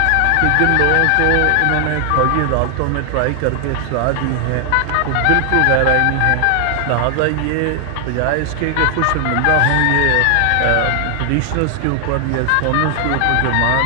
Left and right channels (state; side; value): different; both; correlation 0.00